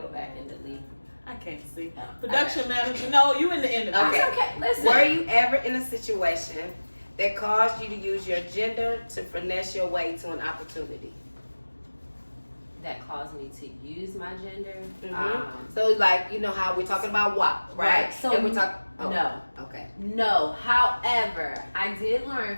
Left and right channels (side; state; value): both; inverted; correlation -1.00